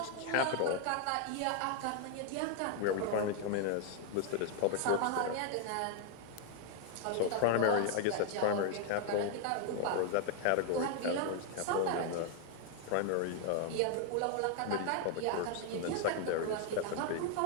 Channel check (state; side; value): different; both; correlation 0.00